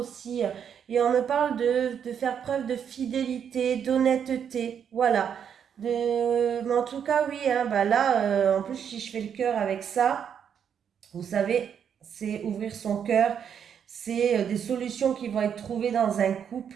Et on me parle de faire preuve de fidélité, d'honnêteté. Voilà. Mais en tout cas, oui, hein, bah là, en plus, si je fais le cœur avec ça, vous savez, c'est ouvrir son cœur. C'est des solutions qui vont être trouvées dans un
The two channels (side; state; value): left; quieter; 8.1 dB